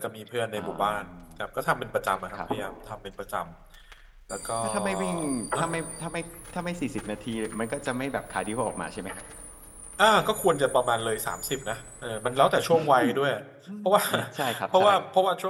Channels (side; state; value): both; identical; correlation 1.00